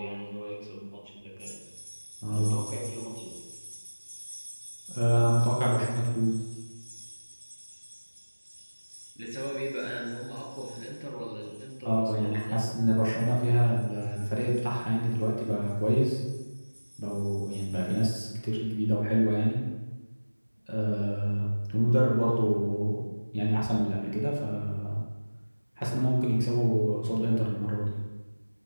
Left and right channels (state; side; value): inverted; both; correlation -1.00